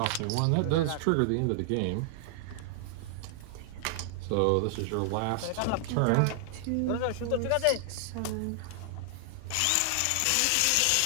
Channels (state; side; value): different; both; correlation 0.00